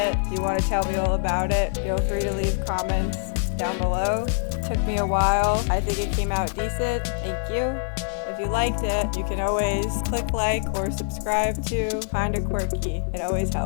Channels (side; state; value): right; silent; 62 dB below the other